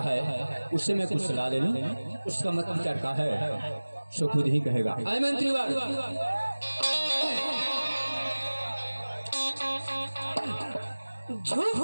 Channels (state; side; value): inverted; both; correlation -1.00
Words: है, उससे मैं कुछ सलाह ले लूं, उसका मत विचार का है सो खुद ही कहेगा। आए मंत्री वाल,